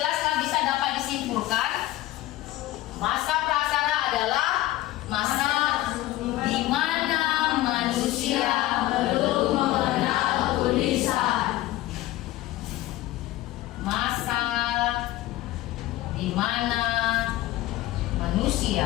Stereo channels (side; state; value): right; quieter; 16.0 dB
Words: bisa dapat disimpulkan masa praaksara adalah masa di mana manusia belum mengenal tulisan. Masa di mana